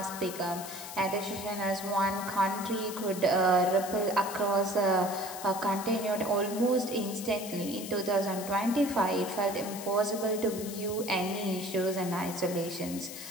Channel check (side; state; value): left; noise; hiss, 11 dB below the sound